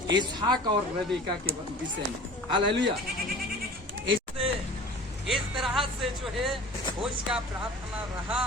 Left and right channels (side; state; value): both; normal; correlation 0.42